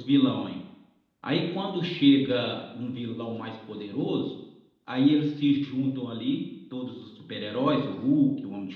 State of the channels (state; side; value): identical; both; correlation 1.00